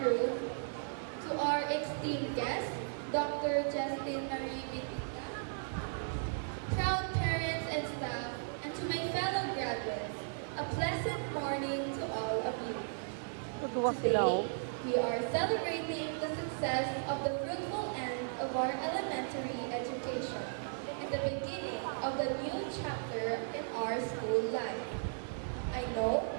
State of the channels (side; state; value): left; silent; digital silence